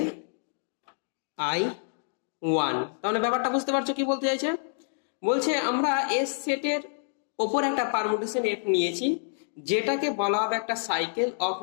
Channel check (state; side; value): silent; right; digital silence